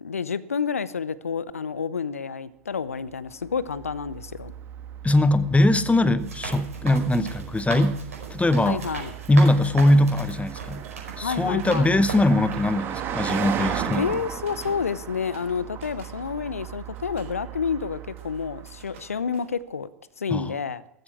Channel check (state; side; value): normal; both; correlation 0.59